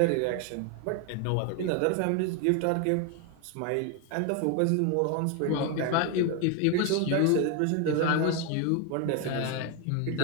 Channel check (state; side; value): different; both; correlation 0.01